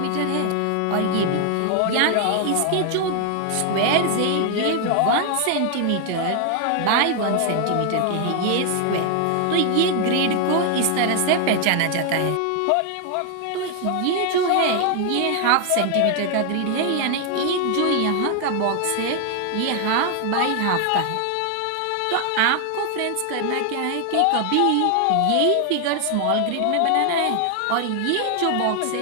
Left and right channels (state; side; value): different; both; correlation 0.00